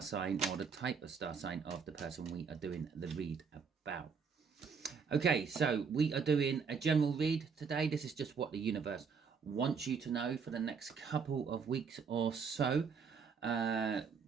sign or the type of star sign of the person we are doing the read about. Okay, so we are doing a general read today. This is just what the universe wants you to know for the next couple of weeks or so.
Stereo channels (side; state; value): left; quieter; 5.8 dB